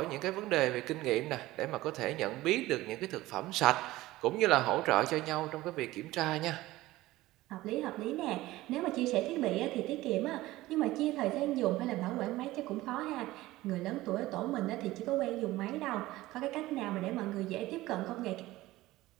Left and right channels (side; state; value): left; quieter; 17.5 dB